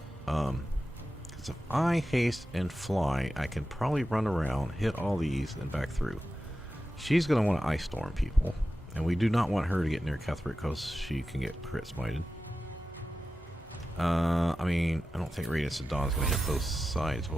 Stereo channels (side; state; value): both; normal; correlation 0.93